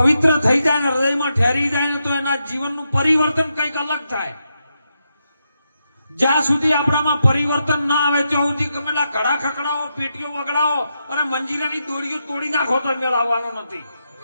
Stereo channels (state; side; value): inverted; both; correlation -0.84